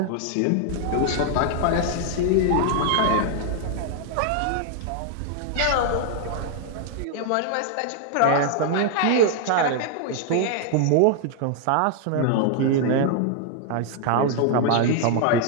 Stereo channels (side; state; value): both; different; correlation 0.00